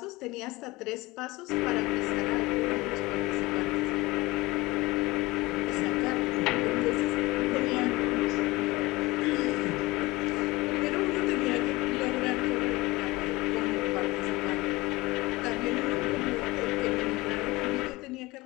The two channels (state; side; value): quieter; right; 21.4 dB